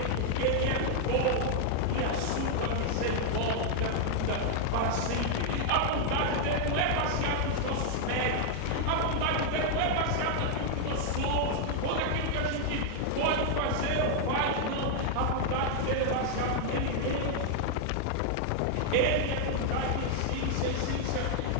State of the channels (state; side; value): different; both; correlation 0.00